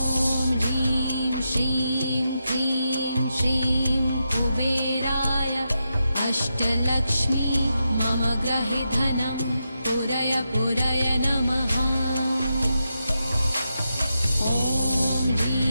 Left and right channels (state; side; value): inverted; both; correlation -0.86